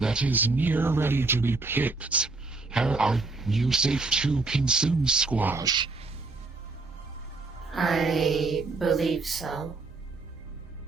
that is near ready to be picked. Are you safe to consume squash? I believe so.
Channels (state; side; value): quieter; left; 3.6 dB